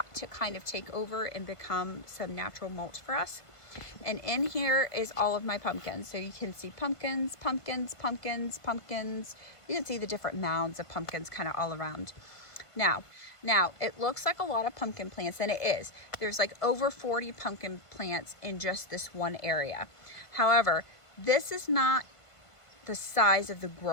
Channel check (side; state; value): right; late; 1.5 ms